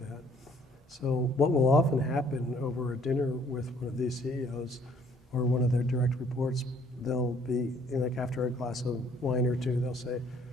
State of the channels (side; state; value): both; normal; correlation 0.61